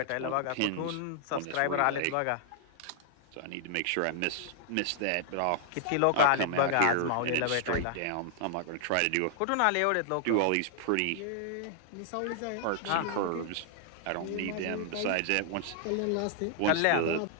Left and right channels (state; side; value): different; both; correlation -0.01